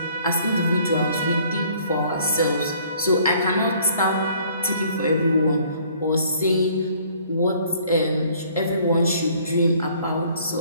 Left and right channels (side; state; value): both; inverted; correlation -0.59